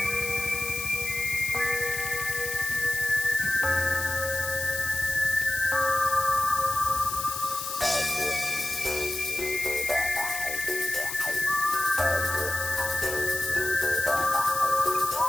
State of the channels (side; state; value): left; noise; hiss, 5 dB below the sound